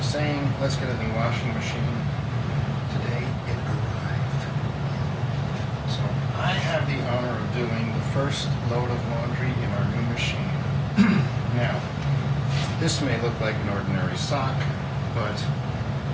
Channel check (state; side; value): identical; both; correlation 1.00